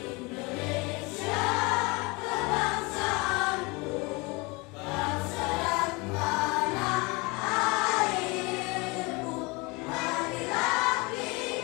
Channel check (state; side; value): quieter; right; 26.7 dB